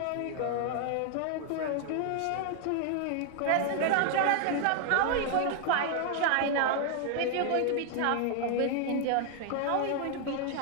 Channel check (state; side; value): different; both; correlation 0.00